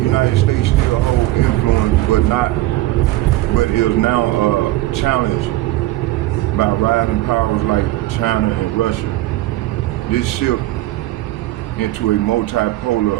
States still hold influence, but is now challenged by rising powers like China and Russia. This shift into a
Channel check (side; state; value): left; quieter; 16.7 dB